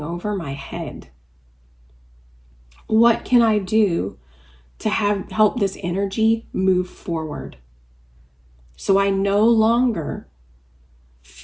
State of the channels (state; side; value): identical; both; correlation 1.00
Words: over my head? What can I do to help this energy move forward? So I no longer